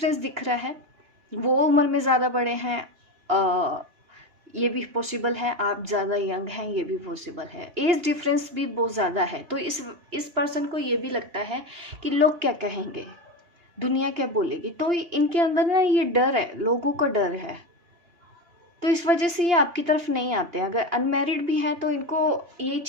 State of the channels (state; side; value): late; left; 2.9 ms